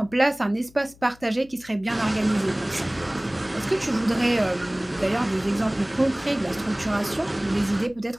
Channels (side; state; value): left; noise; hum, 25 dB below the sound